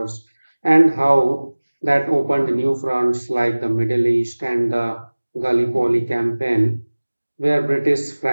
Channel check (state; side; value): inverted; both; correlation -1.00